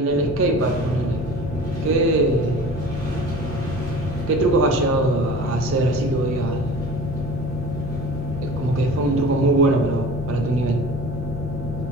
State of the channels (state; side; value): normal; both; correlation 0.40